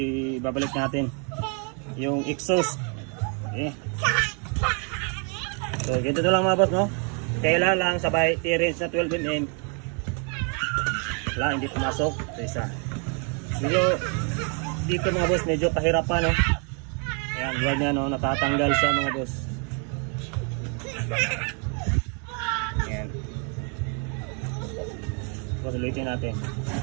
natin yung exhaust. Okay. So ganito na lang mga boss, no. Kailan lang sabay T-range na 12mm. Wala, hindi pumasok. So isa. Dito mga boss, medyo kahirapan, no. Ayan, buwan niya, no, natatanggal siya mga boss. Ayan. So ulitin natin.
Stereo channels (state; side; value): quieter; left; 38.1 dB